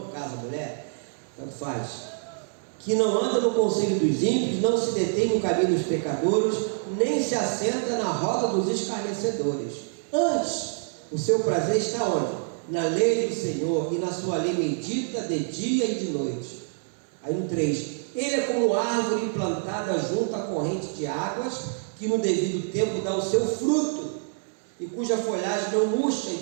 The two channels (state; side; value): silent; left; digital silence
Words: caso a mulher, tanto faz, que não anda no conselho dos ímpios, não se detém no caminho dos pecadores, nem se assenta na roda dos escarnecedores. Antes, o seu prazer está onde? Na lei do Senhor, e na sua lei medita de dia e de noite. Aí no 3, ele é como árvore plantada junto à corrente de águas, que no devido tempo dá o seu fruto, e cuja folhagem não murcha,